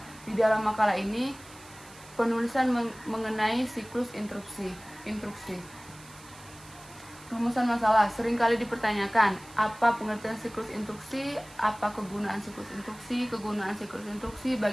Di dalam makalah ini, penulisan mengenai siklus instruksi. Rumusan masalah seringkali dipertanyakan, apa pengertian siklus instruksi, apa kegunaan siklus instruksi,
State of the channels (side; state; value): right; noise; hiss, 21 dB below the sound